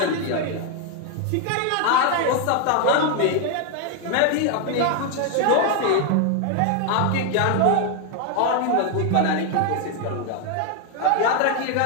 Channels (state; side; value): different; both; correlation 0.01